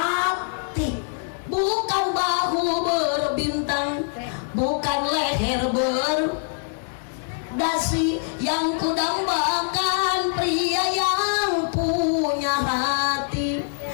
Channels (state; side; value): silent; right; 63 dB below the other